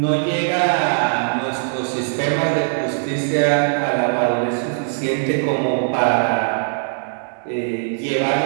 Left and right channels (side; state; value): left; silent; digital silence